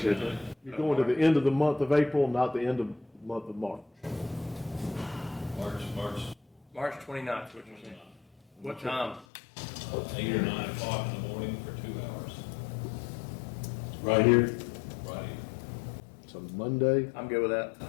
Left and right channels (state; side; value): drops out; right; at 9.2 s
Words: You're going to the end of the month of April, not the end of the month of March. March 29th, what you saying? What time? 8 or 9 o'clock in the morning for 2 hours. Right here? Right here. So Monday. I'm good with that.